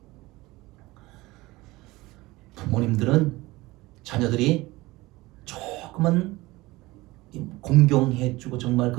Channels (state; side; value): quieter; left; 20.2 dB